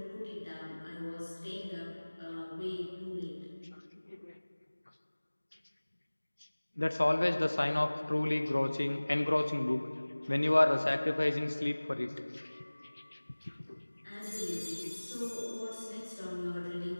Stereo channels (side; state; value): both; inverted; correlation -1.00